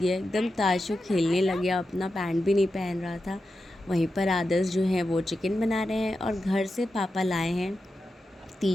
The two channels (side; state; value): both; normal; correlation 0.90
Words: एकदम। ताशु खेलने लग गया, अपना पैंट भी नहीं पहन रहा था। वहीं पर आदर्श जो हैं वो चिकन बना रहे हैं और घर से पापा लाए हैं